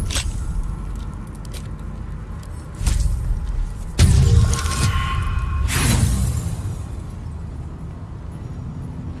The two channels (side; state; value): both; identical; correlation 1.00